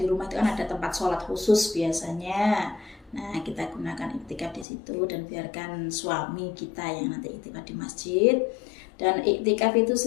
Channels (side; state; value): right; drops out; at 4.7 s